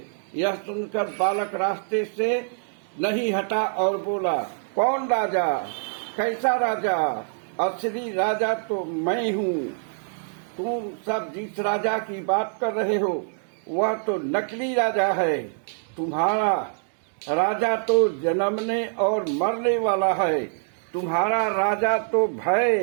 यह सुनकर बालक रास्ते से नहीं हटा और बोला, कौन राजा? कैसा राजा? असली राजा तो मैं हूँ। तुम सब जिस राजा की बात कर रहे हो वह तो नकली राजा है। तुम्हारा राजा तो जन्मने और मरने वाला है। तुम्हारा राजा तो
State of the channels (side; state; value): left; silent; digital silence